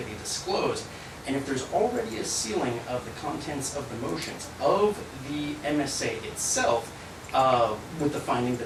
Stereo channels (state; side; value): identical; both; correlation 1.00